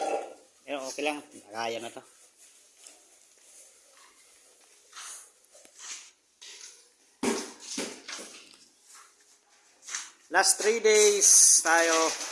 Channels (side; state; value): both; identical; correlation 1.00